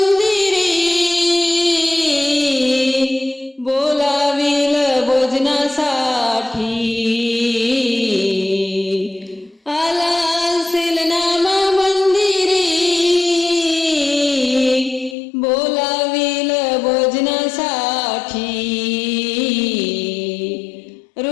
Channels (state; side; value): drops out; right; at 15.2 s